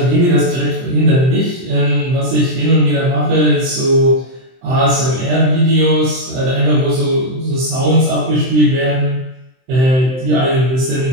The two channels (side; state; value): left; late; 23 ms